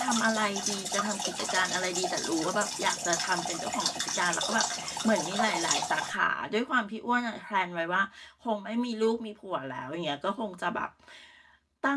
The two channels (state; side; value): identical; both; correlation 1.00